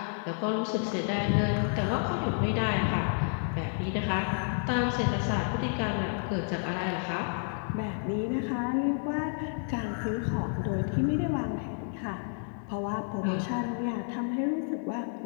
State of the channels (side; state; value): right; silent; 58 dB below the other